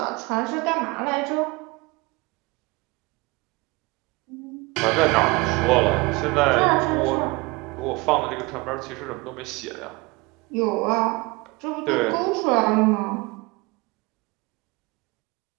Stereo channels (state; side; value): quieter; left; 24.9 dB